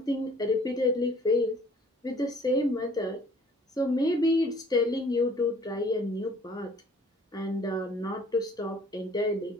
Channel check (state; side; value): normal; both; correlation 0.55